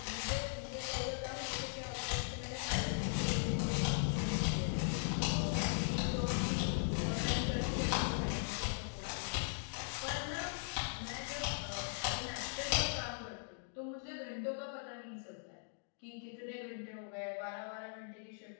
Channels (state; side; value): silent; right; digital silence